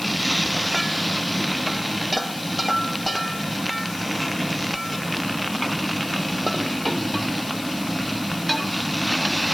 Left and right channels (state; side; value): noise; left; hiss, 12 dB below the sound